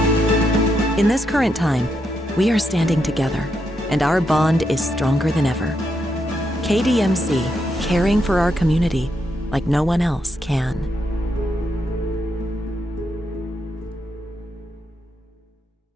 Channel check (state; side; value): normal; both; correlation 0.81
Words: In this current time, we are standing together, and our bond is stronger than ever. KDMC, caring for our community like no one else can.